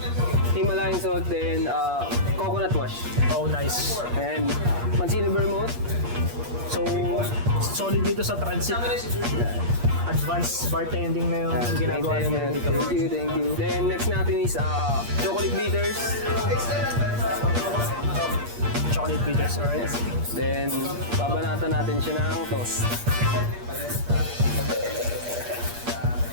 Himalayan salt, then coconut wash. Oh, nice. And Mancini Vermouth. So, solid dito sa transit. Advanced bartending na yung ginagawa natin dito. Thank you. Then next natin is chocolate bitters. Chocolate bitters, alright? Then babanatan natin siya ng toast.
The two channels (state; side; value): late; left; 8.5 ms